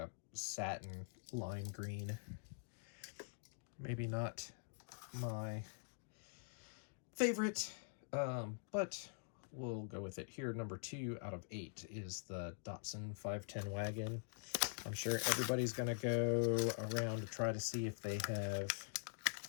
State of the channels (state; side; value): silent; right; digital silence